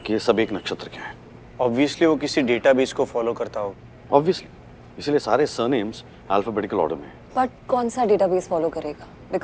कि ये सब एक नक्षत्र के हैं। ऑब्वियसली वो किसी डेटाबेस को फॉलो करता हो। ऑब्वियसली, इसलिए सारे सरनेम्स अल्फाबेटिकल ऑर्डर में। बट कौन सा डेटाबेस फॉलो करेगा?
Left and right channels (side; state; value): both; identical; correlation 1.00